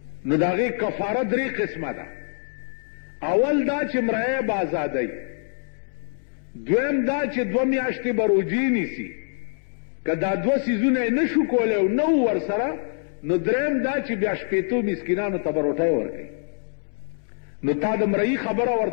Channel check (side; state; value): right; silent; 62 dB below the other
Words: نو د هغې کفاره 3 قسمه ده. اول دا چې مریه به ازادی، دویم دا چې 2 میاشتې به روجې نیسي، که دا 2 څیزونه یې نه شو کولی او نه و ورسره نو دریم دا چې بیا 80 مسکینانو ته به روټۍ ورکوي. نو تا د مرئی خبره